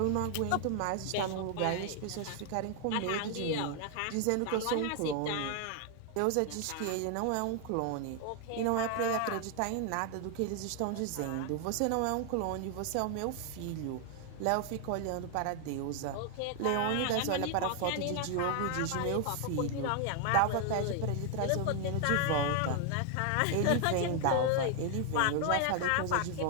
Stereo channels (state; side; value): different; both; correlation 0.00